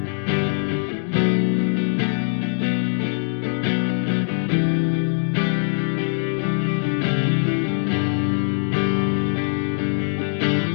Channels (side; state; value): right; silent; digital silence